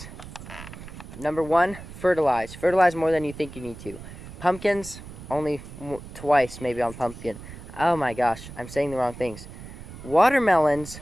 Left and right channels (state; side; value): noise; right; rumble, 14 dB below the sound